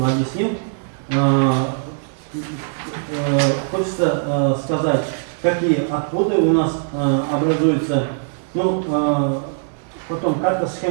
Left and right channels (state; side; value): silent; left; digital silence